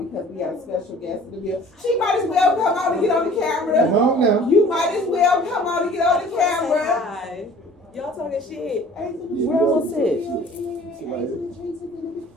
because we have a special guest in the building. She might as well come on and get on the camera. Come on now. You might as well come on and get on the camera. Hi. Y'all talking shit. Where was it?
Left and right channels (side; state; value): both; normal; correlation 0.49